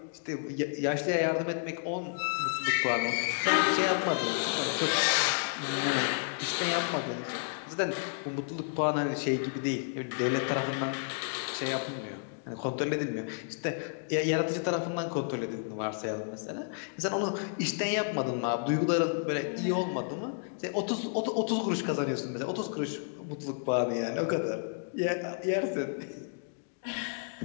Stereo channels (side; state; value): right; silent; digital silence